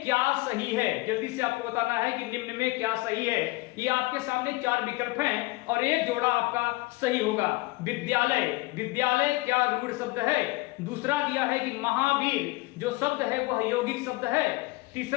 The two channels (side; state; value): right; quieter; 22.3 dB